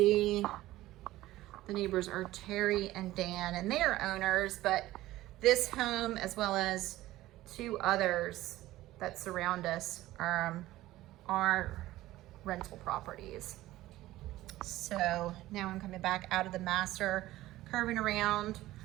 The neighbors are Terry and Dan, and they are owners, but this home, as well as 2 others that surround us, are rental properties. So now I'm coming back out of the master, curving around.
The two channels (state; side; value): quieter; left; 16.2 dB